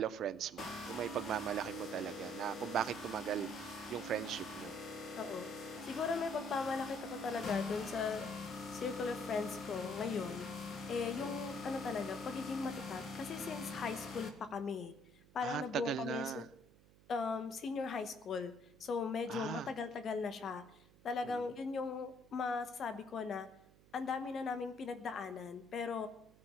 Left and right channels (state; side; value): noise; right; hum, 25 dB below the sound